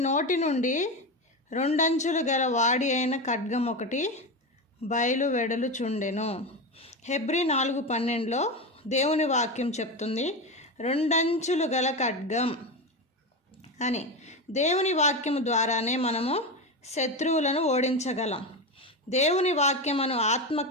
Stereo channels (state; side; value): normal; both; correlation 0.18